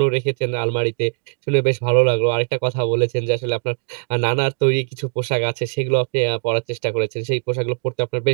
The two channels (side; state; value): left; silent; digital silence